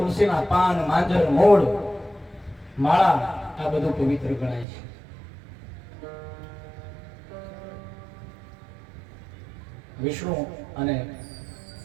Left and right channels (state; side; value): drops out; left; at 4.7 s